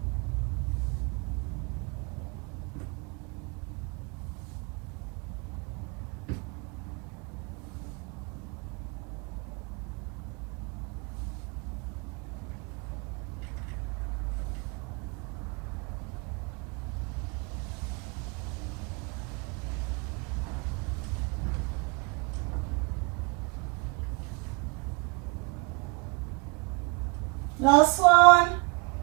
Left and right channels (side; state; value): left; quieter; 29.5 dB